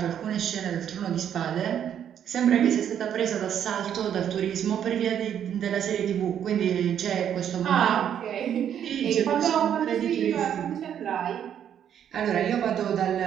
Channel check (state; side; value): quieter; left; 9.3 dB